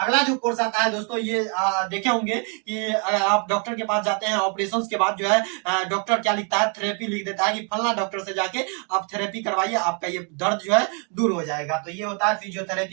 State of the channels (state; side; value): quieter; left; 38.1 dB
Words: जो कोर्स आता है दोस्तों, ये देखे होंगे कि आप डॉक्टर के पास जाते हैं, ऑपरेशन के बाद जो है डॉक्टर क्या लिखता है, थेरेपी लिख देता है कि फलना डॉक्टर से जाके आप थेरेपी करवाइए, आपका ये दर्द जो है दूर हो जाएगा। तो ये होता है